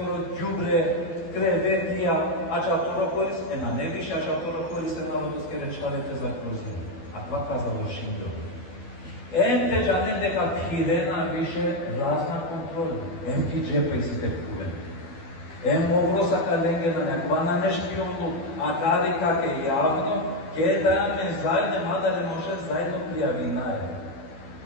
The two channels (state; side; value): late; right; 12 ms